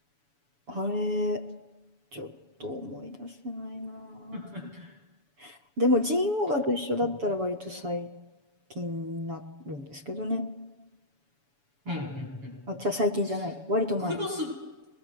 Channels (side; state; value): left; late; 7.0 ms